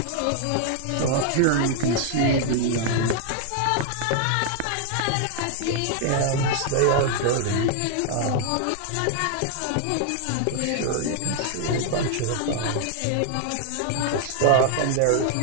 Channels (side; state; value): both; different; correlation 0.00